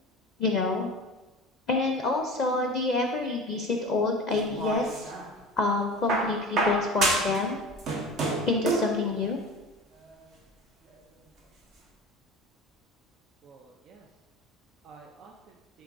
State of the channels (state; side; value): normal; both; correlation 0.35